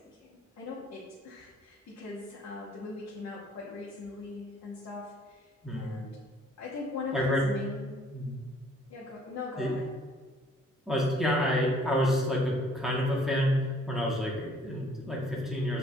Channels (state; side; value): normal; both; correlation 0.59